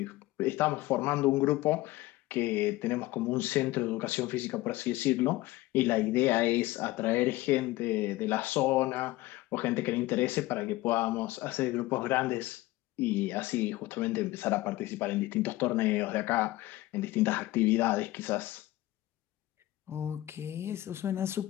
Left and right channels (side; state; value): right; quieter; 18.0 dB